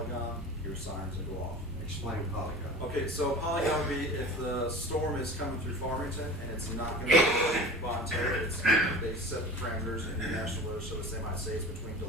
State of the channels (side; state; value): both; normal; correlation 0.36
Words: your sirens will go off. Explain polygon. Okay, so polygon would be if the storm is coming through Farmington and it's not gonna be voluntary, they set the parameters in the National Weather Service, they might say it's between